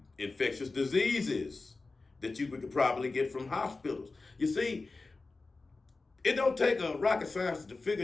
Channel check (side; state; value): right; quieter; 3.7 dB